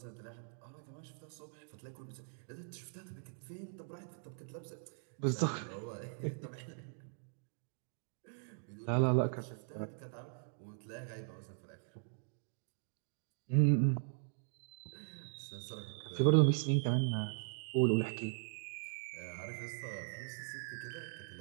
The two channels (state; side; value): silent; left; digital silence